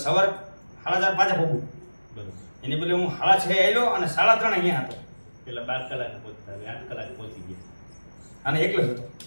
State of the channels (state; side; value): inverted; both; correlation -1.00